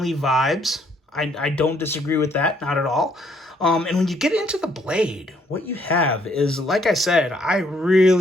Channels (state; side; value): normal; both; correlation 0.67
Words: vibes. I don't disagree with that, not at all. And when you get into the blade, what you have is, like I said, I